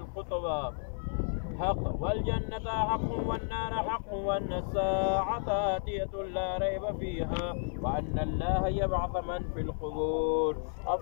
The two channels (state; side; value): silent; right; 56 dB below the other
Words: حق والجنة حق والنار حق وأن الساعة آتية لا ريب فيها وأن الله يبعث من في القبور.